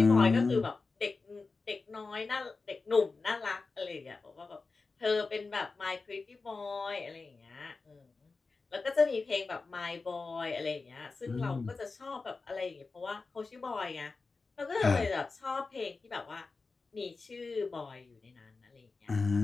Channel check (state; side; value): quieter; right; 4.1 dB